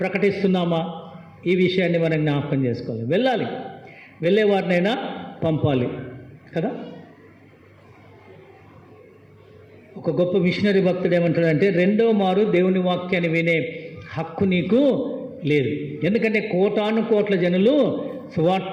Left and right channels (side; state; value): both; identical; correlation 1.00